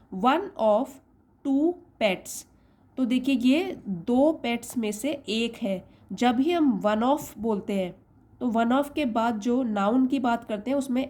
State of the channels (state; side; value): identical; both; correlation 1.00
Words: one of two pets. तो देखिए ये दो पेट्स में से एक है। जब भी हम वन ऑफ बोलते हैं तो वन ऑफ के बाद जो नाउन की बात करते हैं उसमें